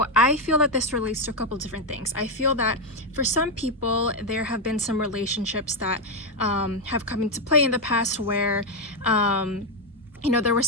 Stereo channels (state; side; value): normal; both; correlation 0.05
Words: I feel that this relates to a couple different things. I feel that for some people, there have been some relationships that have come into play in the past where there was